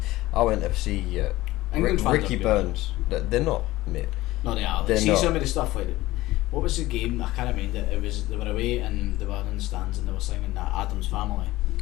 I went to see England fans Ricky are good. Burns. They're not, mate. No, they are. They're See not. some of the stuff What was the game? I can't remember it. It was they were away and they were in the stands and they were singing that Adam's Family.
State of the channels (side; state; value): right; quieter; 17.7 dB